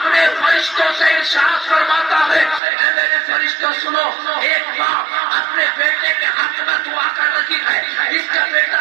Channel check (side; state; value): left; drops out; at 2.6 s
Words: فرشتوں سے ارشاد فرماتا ہے، اے میرے فرشتوں سنو، ایک ماں اپنے بیٹے کے حق میں دعا کر رہی ہے، اس کا بیٹا